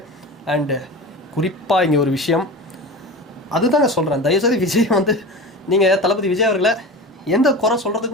அண்டு குறிப்பாக இங்கே ஒரு விஷயம் அதுதாங்க சொல்கிறேன், தயவுசெய்து விஜய் வந்து நீங்கள் தளபதி விஜய் அவர்களை எந்த குறை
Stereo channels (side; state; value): both; normal; correlation 0.30